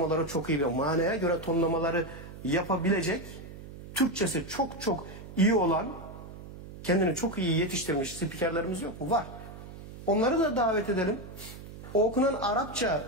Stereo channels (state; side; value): noise; right; hum, 14 dB below the sound